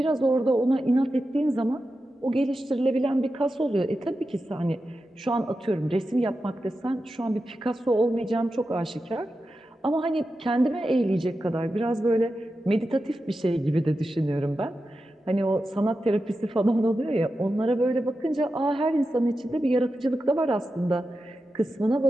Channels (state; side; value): normal; both; correlation 0.91